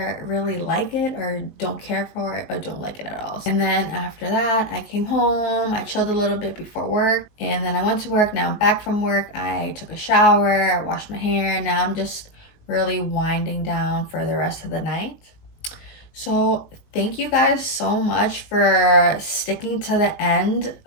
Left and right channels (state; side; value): late; right; 19 ms